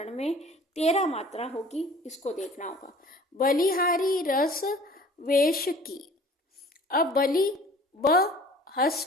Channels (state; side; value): normal; both; correlation 0.48